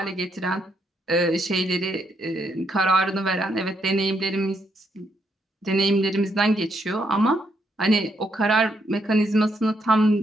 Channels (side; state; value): both; normal; correlation 0.77